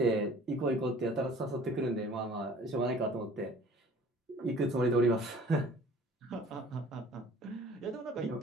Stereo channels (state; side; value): normal; both; correlation 0.50